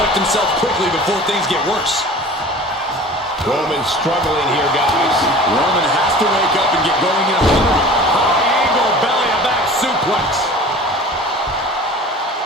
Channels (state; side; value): normal; both; correlation 0.41